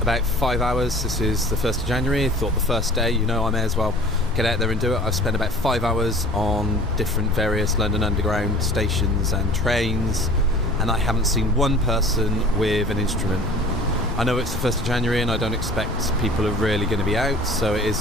about 5 hours. This is the 1st of January. I thought the first day, I may as well get out there and do it. I've spent about 5 hours on different various London Underground stations and trains, and I haven't seen one person with an instrument. I know it's the 1st of January and I don't expect people are really going to be out, so it is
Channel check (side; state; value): both; normal; correlation 0.45